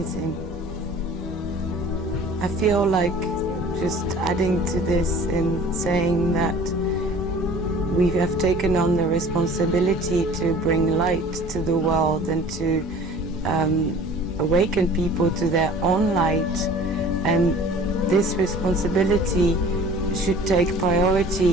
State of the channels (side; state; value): both; normal; correlation 0.46